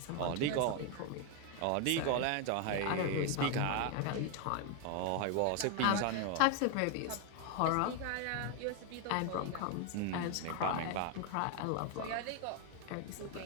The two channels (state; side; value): different; both; correlation 0.01